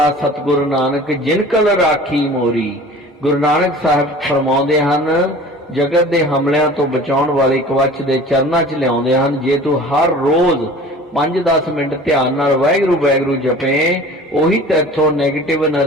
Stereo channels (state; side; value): normal; both; correlation 0.42